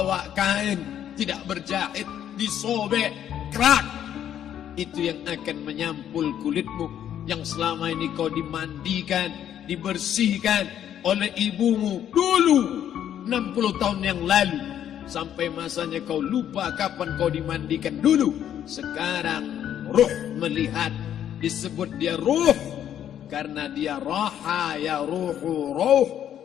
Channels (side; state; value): right; quieter; 10.2 dB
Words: kain tidak berjahit, disobek, kerak. Itu yang akan menyampul kulitmu, yang selama ini kau dimandikan, dibersihkan oleh ibumu dulu 60 tahun yang lalu. Sampai masanya kau lupa kapan kau dimandikan dulu. Sekarang ruh melihat, disebut dia ruh karena dia raha ya ruhu ruh,